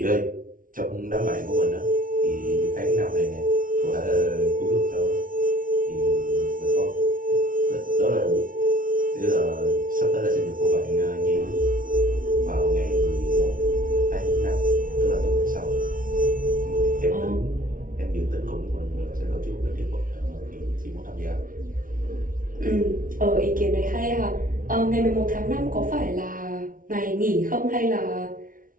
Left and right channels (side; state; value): left; late; 0.39 ms